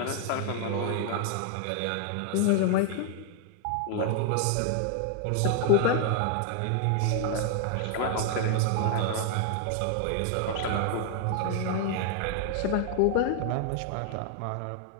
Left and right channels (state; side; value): different; both; correlation 0.00